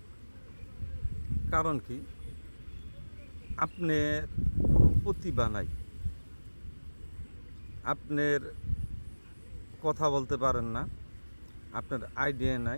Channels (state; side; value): inverted; both; correlation -1.00